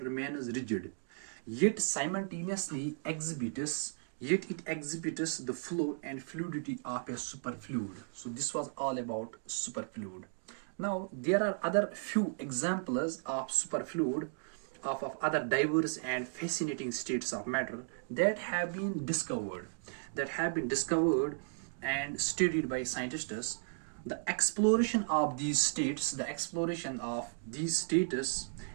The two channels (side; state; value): left; silent; digital silence